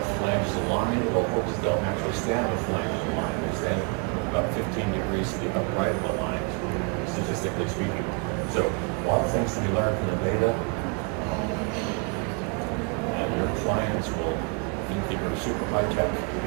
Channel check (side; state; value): left; quieter; 33.6 dB